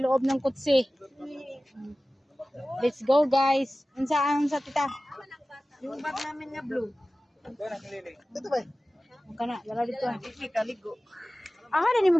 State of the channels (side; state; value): both; normal; correlation 0.97